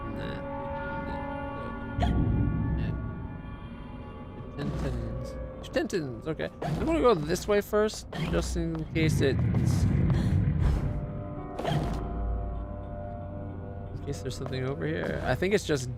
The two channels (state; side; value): identical; both; correlation 1.00